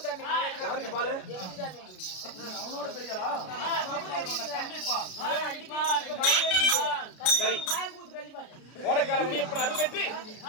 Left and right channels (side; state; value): right; late; 33 ms